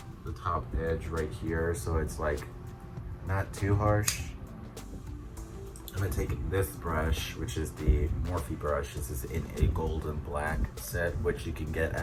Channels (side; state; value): both; identical; correlation 1.00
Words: the top edge right here so it's like not too harsh. I'm gonna take this brush, which is the Morphe brush. This is in a golden black set, which you can get